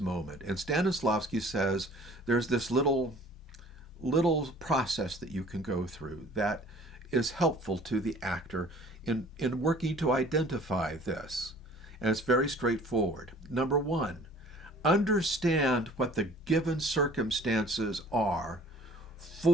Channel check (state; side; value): normal; both; correlation 0.51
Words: And Stanislavsky says there's this little process that you can go through that is helpful to the actor in working to identify this. And it's very straightforward. Number one, understand what the given circumstances are